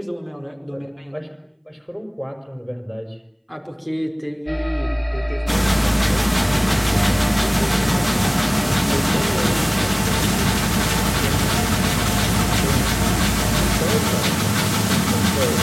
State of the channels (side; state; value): both; identical; correlation 1.00